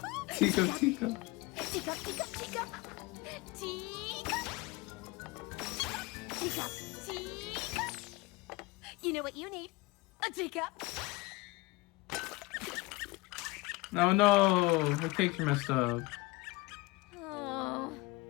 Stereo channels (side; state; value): right; quieter; 22.0 dB